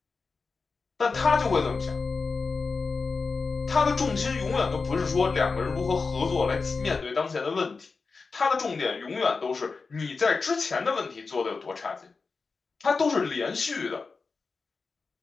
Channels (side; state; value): right; quieter; 4.4 dB